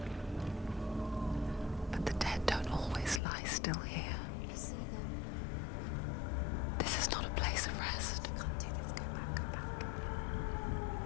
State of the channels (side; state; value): right; drops out; at 3.2 s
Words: But the dead don't always lie still here. You see them? This is not a place of rest. You can't do this. Go back. Go back.